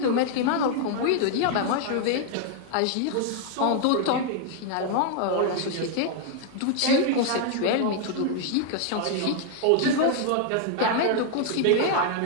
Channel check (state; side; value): different; both; correlation 0.00